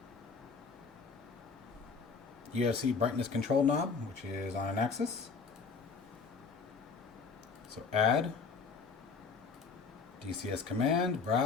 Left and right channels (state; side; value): quieter; right; 5.1 dB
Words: UFC brightness control knob, which is on an axis. So add, DCS command,